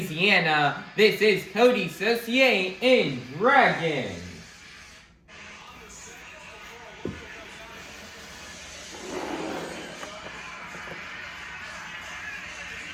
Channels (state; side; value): identical; both; correlation 1.00